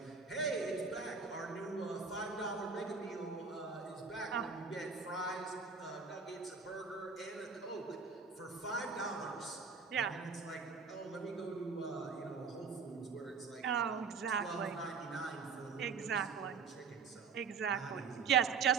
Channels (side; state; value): left; quieter; 5.5 dB